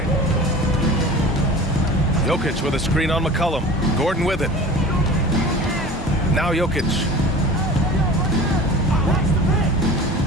Jokic with a screen on McCollum. Gordon with it. Now Jokic.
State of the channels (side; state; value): both; normal; correlation 0.39